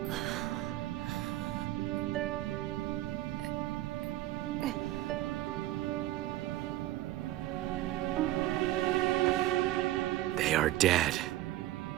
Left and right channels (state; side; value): quieter; left; 15.6 dB